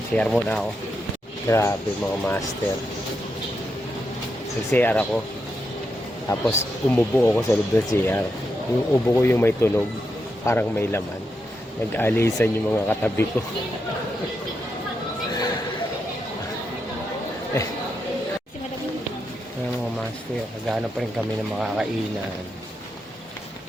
Share muna ako. Grabe mga master. Nag-CR ako. Tapos umubo ako sa loob ng CR. Yung ubo ko yung may tunog. Parang may laman. Nag-alisan yung mga katabi ko. Ayan mga master. Naghahanap pa rin kami ng makakainan.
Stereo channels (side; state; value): both; normal; correlation 0.84